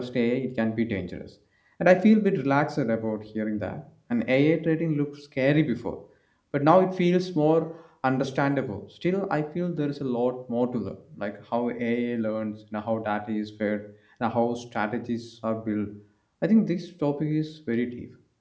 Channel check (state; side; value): identical; both; correlation 1.00